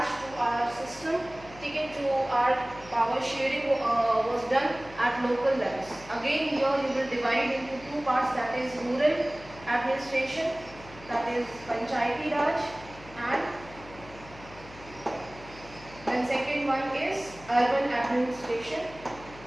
to our system. ठीक है? To our power sharing was done at local levels. Again here you will divide into two parts, that is rural administration, that is panchayati raj, and then second one is urban administration,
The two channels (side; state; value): left; noise; hum, 19 dB below the sound